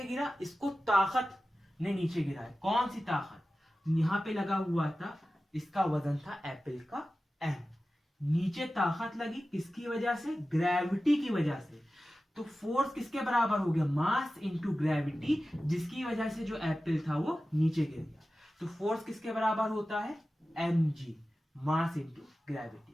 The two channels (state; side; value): normal; both; correlation 0.95